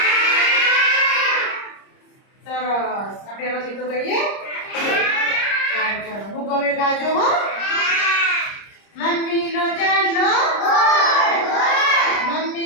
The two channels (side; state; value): right; late; 30 ms